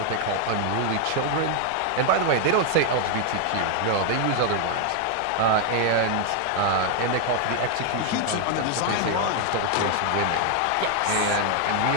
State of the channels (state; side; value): different; both; correlation 0.00